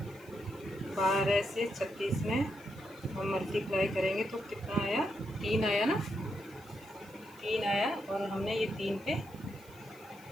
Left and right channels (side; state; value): right; noise; hiss, 25 dB below the sound